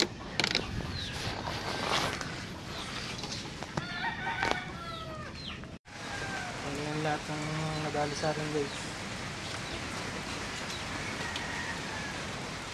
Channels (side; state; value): both; identical; correlation 1.00